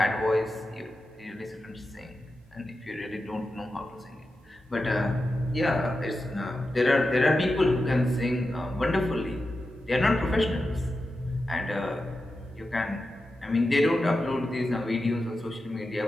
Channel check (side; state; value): both; normal; correlation 0.91